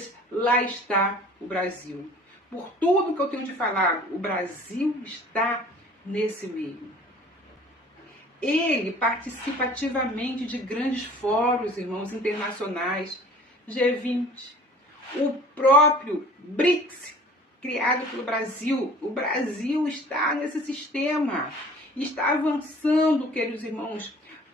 lá está o Brasil. Por tudo que eu tenho de falar, o Brasil está nesse meio. Ele participa ativamente de grandes fóruns, irmãos, internacionais, G20, o próprio BRICS, criado pelo Brasil. O Brasil está nesse sistema, está avançando, queridos irmãos,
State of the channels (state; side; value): normal; both; correlation 0.48